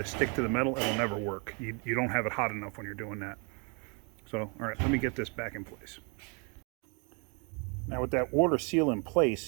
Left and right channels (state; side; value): quieter; left; 34.7 dB